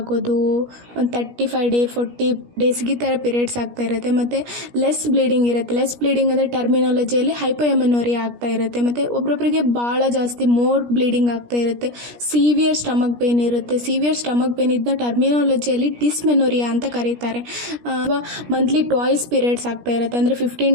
ಒಂದು 35 ಡೇ 40 ಡೇಸ್ಗೆ ಈ ಥರ ಪೀರಿಯಡ್ಸ್ ಆಗ್ತಾ ಇರುತ್ತೆ, ಮತ್ತು ಲೆಸ್ ಬ್ಲೀಡಿಂಗ್ ಇರುತ್ತೆ. ಲೆಸ್ ಬ್ಲೀಡಿಂಗ್ ಅಂದರೆ ಟರ್ಮಿನಾಲಜಿಯಲ್ಲಿ ಹೈಪೋಎಮನೋರಿಯಾ ಆಗ್ತಾ ಇರುತ್ತೆ, ಮತ್ತು ಒಬ್ಬೊಬ್ಬರಿಗೆ ಭಾಳ ಜಾಸ್ತಿ ಮೋರ್ ಬ್ಲೀಡಿಂಗ್ ಆಗ್ತಾ ಇರುತ್ತೆ. ಸಿವಿಯರ್ ಸ್ಟಮಕ್ ಪೇನ್ ಇರುತ್ತೆ. ಸಿವಿಯರ್ ಸ್ಟಮಕ್ ಪೇನ್ ಇದನ್ನ ಟರ್ಮಿನಾಲಜಿಯಲ್ಲಿ ಡಿಸ್ಮೆನೋರಿಯಾ ಅಂತ ಕರೀತಾರೆ. ಮಂತ್ಲಿ ಟ್ವಾಯ್ಸ್ ಪೀರಿಯಡ್ಸ್ ಆಗ್ತಾ ಇರುತ್ತೆ, ಅಂದರೆ 15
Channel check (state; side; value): late; left; 17 ms